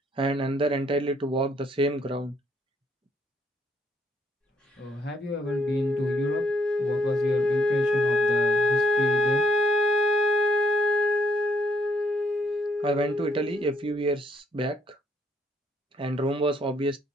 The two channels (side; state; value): both; normal; correlation 0.70